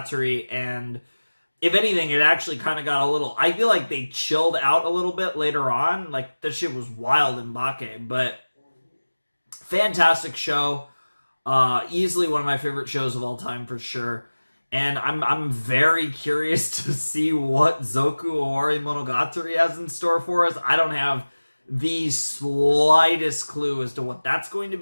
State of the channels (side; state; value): both; inverted; correlation -1.00